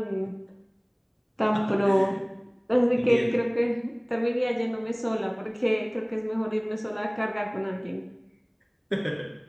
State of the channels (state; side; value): identical; both; correlation 1.00